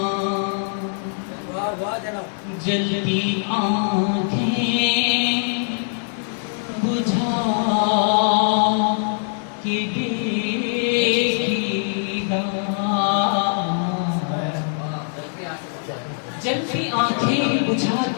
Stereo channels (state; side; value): silent; right; digital silence